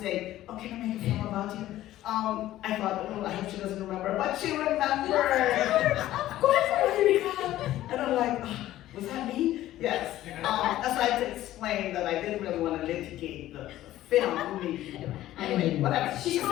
saying, oh, can I make a film about you? I thought, I hope she doesn't remember, but she remembered. Of course I remember. And I'm like, was that me? Yes. So I had to explain that I didn't really want to litigate the film. Anyway, whatever. She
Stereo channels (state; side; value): quieter; right; 14.3 dB